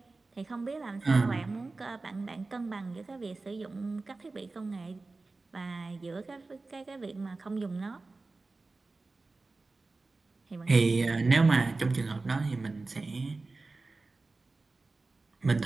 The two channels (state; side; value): quieter; left; 3.6 dB